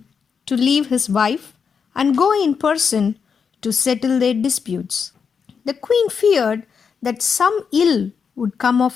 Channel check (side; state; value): right; quieter; 6.2 dB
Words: to leave his wife and go in person to settle their disputes. The queen feared that some ill would come